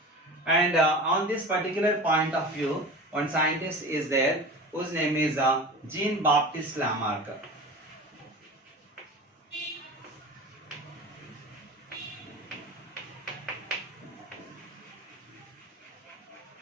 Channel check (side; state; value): both; normal; correlation 0.34